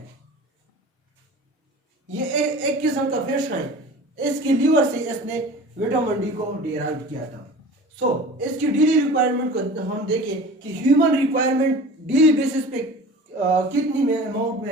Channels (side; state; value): both; normal; correlation 0.39